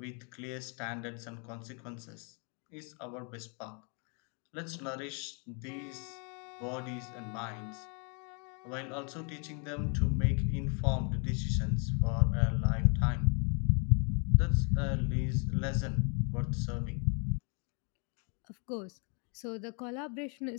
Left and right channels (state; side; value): quieter; right; 37.4 dB